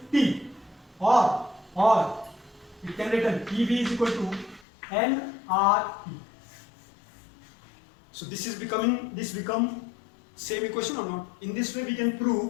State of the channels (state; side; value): drops out; right; at 4.7 s